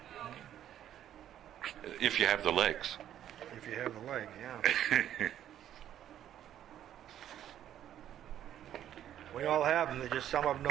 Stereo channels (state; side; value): quieter; left; 11.0 dB